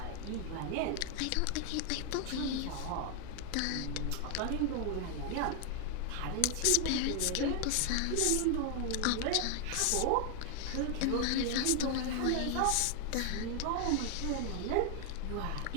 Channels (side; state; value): both; different; correlation 0.00